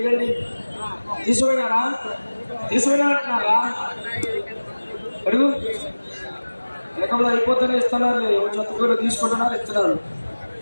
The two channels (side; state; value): both; inverted; correlation -1.00